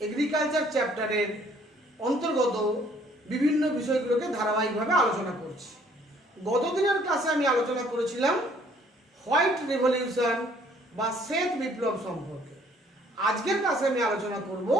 এগ্রিকালচার চ্যাপ্টারের অন্তর্গত বিভিন্ন বিষয়গুলোকে ধারাবাহিকভাবে আলোচনা করছি। গতদিনের ক্লাসে আমি আলোচনা করেছিলাম হোয়াইট রেভলিউশন বা শ্বেত বিপ্লব সম্পর্কে। আজকের ক্লাসে আমি আলোচনা করব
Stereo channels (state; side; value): normal; both; correlation 0.60